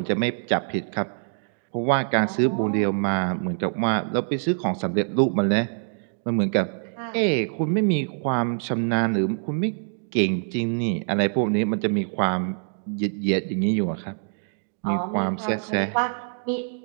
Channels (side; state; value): left; silent; digital silence